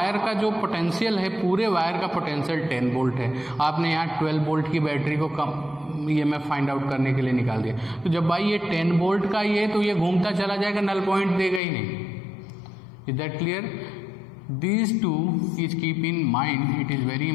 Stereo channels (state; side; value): drops out; right; at 11.6 s